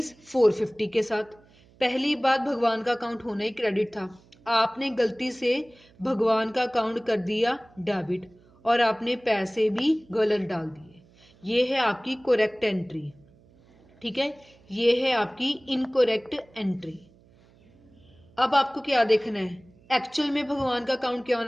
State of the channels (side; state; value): right; noise; hum, 29 dB below the sound